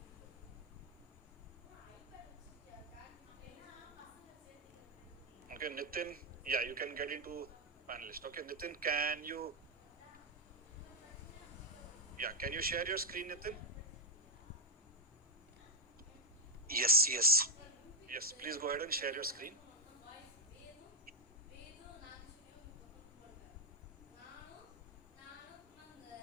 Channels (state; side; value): normal; both; correlation 0.02